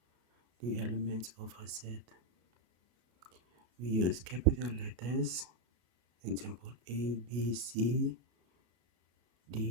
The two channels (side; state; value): left; late; 33 ms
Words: the elements of a set. We use capital letters, example A, B, C,